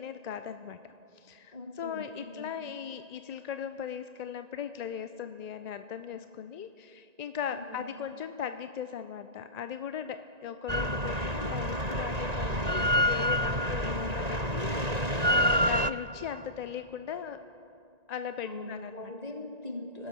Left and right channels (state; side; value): late; left; 1.9 ms